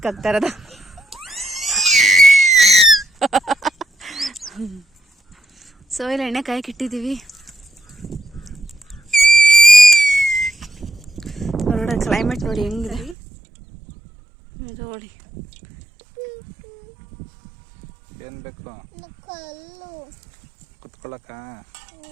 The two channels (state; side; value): drops out; left; at 13.2 s